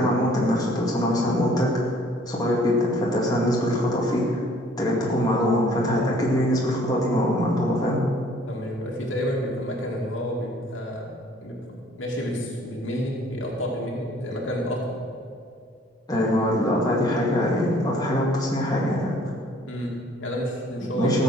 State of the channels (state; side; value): normal; both; correlation 0.57